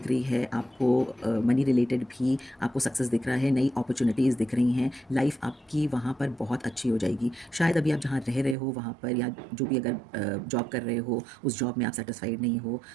रही है आपको। मनी रिलेटेड भी आपको सक्सेस दिख रहा है, नई अपॉर्चुनिटीज़ दिख रही हैं। लाइफ आपकी वहाँ पर बहुत अच्छी हो जाएगी। शायद अभी आप जहाँ रह रहे हो वहाँ पर, या जो भी अगर जॉब कर रहे हो उस जॉब में आप सेटिस्फाइड नहीं हो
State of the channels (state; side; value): drops out; left; at 8.6 s